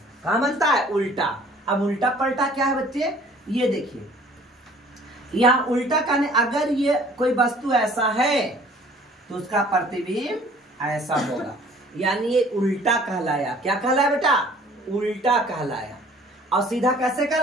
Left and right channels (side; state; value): both; normal; correlation 0.53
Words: कहाँ बनता है? उल्टा। अब उल्टा पलटा क्या है बच्चे? ये देखिए, यहाँ उल्टा कहने, अगर ये कोई वस्तु ऐसा है तो उसका प्रतिबिंब ऐसा होगा, यानी ये उल्टा कहलाया। क्या कहलाया बेटा? उल्टा कहलाया। और सीधा कैसे